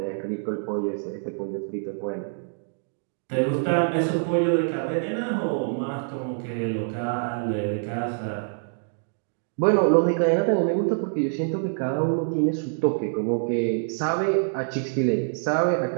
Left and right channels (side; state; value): left; silent; digital silence